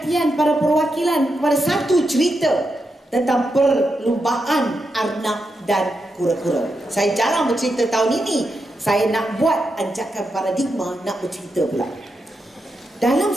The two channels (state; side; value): normal; both; correlation 0.86